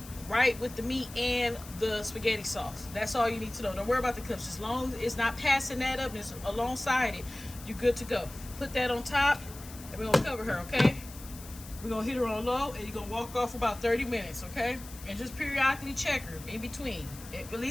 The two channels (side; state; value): left; noise; hiss, 16 dB below the sound